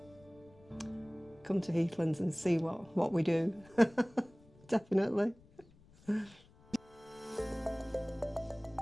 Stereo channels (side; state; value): left; noise; rumble, 26 dB below the sound